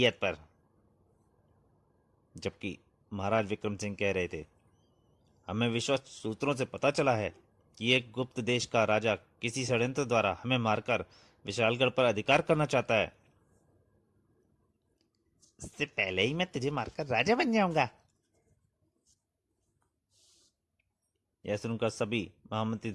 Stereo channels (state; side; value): identical; both; correlation 1.00